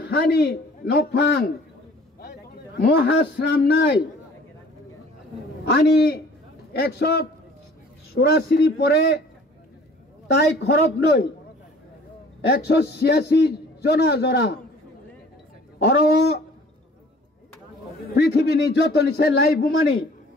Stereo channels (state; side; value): normal; both; correlation 0.51